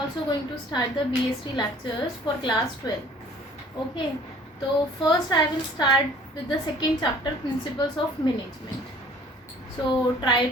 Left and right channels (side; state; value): both; normal; correlation 0.52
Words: going to start the BST lectures for class 12. Okay, so first I will start with the second chapter, Principles of Management. So try